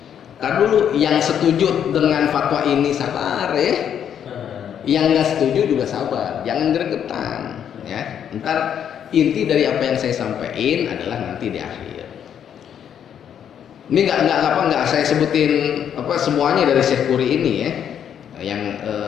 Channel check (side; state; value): right; quieter; 8.9 dB